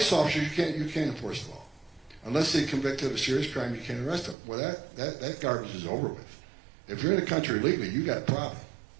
officers you can't enforce the law. Unless they convicted of a serious crime, you can't arrest them. Well, that garbage is over with. If you're in the country illegally, you got a problem.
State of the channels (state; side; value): drops out; left; at 4.4 s